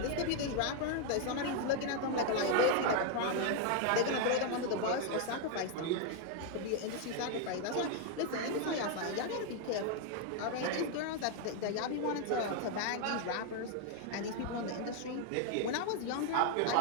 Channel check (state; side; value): different; both; correlation 0.00